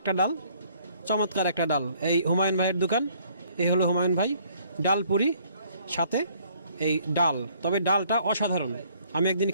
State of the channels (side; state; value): both; inverted; correlation -0.62